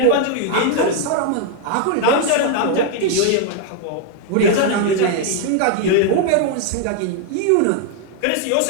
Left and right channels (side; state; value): both; different; correlation 0.00